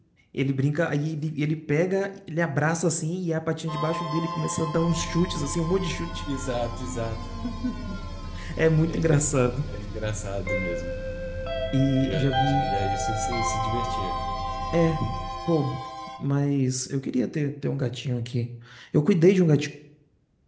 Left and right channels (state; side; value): identical; both; correlation 1.00